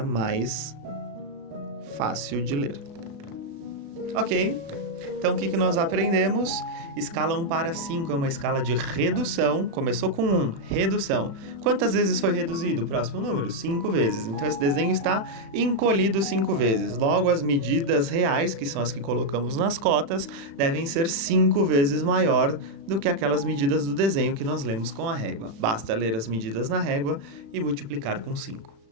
mais fácil de ler. Ok? Então, o que nós aprendemos? Escala 1 para 5 é uma escala de redução. Começou com 1, redução. Quantas vezes foi reduzido? O próximo número? 5 vezes. Então, esse desenho está encolhido 5 vezes. Logo, as medidas reais, que são as que colocamos nas cotas, devem ser 5 vezes maior do que aquelas medidas do desenho que nós lemos com a régua. Basta ler as medidas na régua e multiplicar com 5.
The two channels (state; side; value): late; left; 36 ms